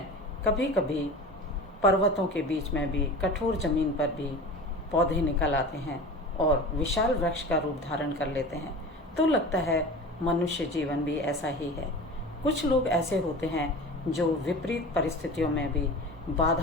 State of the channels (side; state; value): both; normal; correlation 0.35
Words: कभी कभी पर्वतों के बीच में भी, कठोर जमीन पर भी पौधे निकल आते हैं और विशाल वृक्ष का रूप धारण कर लेते हैं, तो लगता है मनुष्य जीवन भी ऐसा ही है। कुछ लोग ऐसे होते हैं जो विपरीत परिस्थितियों में भी,